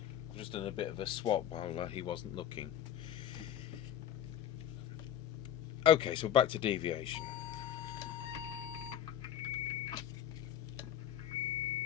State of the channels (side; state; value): right; quieter; 10.3 dB